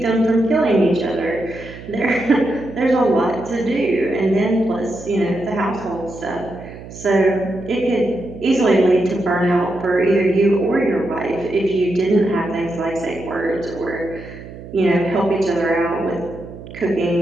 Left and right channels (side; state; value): right; noise; hum, 14 dB below the sound